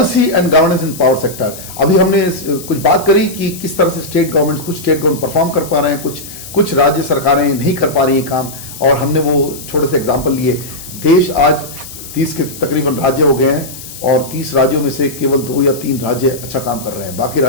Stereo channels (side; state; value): left; noise; hiss, 14 dB below the sound